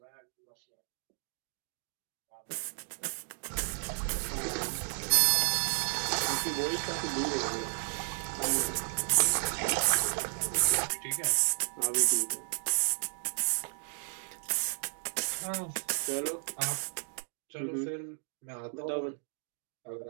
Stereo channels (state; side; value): silent; left; digital silence